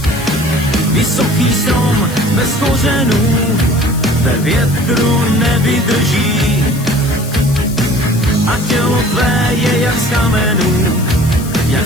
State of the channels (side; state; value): left; noise; hiss, 15 dB below the sound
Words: Vysoký strom bez kořenů ve větru nevydrží a tělo tvé je jak z kamenů, jak